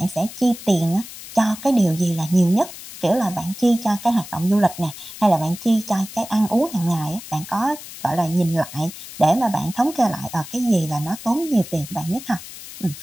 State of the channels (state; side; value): noise; left; hiss, 14 dB below the sound